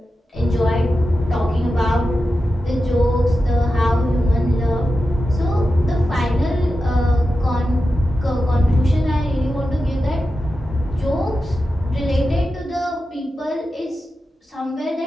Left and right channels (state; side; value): normal; both; correlation 0.91